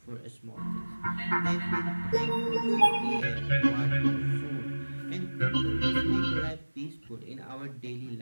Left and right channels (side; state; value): both; inverted; correlation -1.00